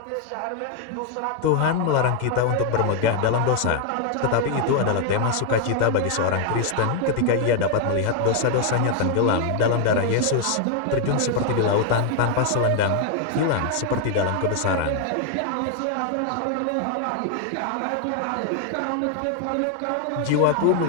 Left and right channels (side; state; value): both; different; correlation 0.00